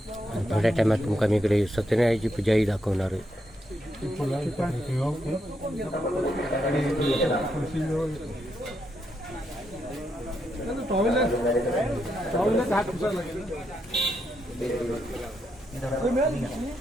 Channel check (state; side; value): normal; both; correlation 0.80